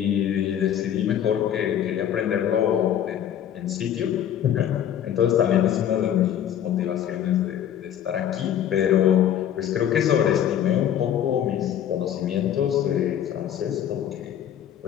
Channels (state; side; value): quieter; right; 10.1 dB